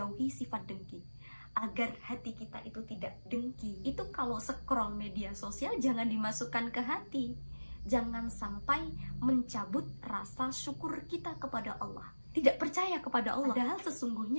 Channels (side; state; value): both; inverted; correlation -1.00